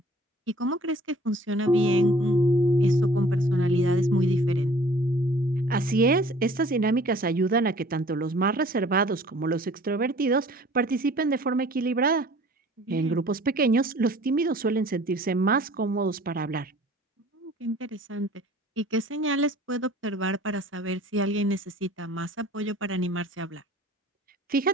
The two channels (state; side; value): normal; both; correlation 0.51